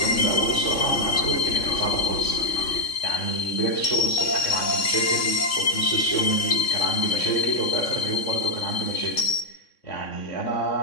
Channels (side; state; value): right; late; 3.6 ms